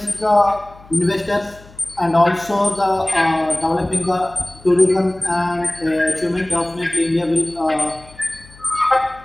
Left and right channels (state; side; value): noise; left; hum, 23 dB below the sound